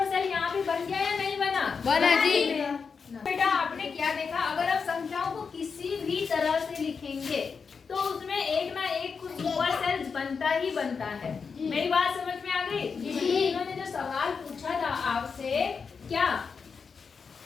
सेल यहाँ भी बन गया या नहीं बना? बना जी। बेटा आपने क्या देखा, अगर आप संख्याओं को किसी भी तरह से लिखेंगे तो उसमें एक ना एक कुछ सुपर सेल बनता ही बनता है। मेरी बात समझ में आ गई? इन्होंने जो सवाल पूछा था आपसे, क्या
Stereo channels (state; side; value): quieter; right; 5.5 dB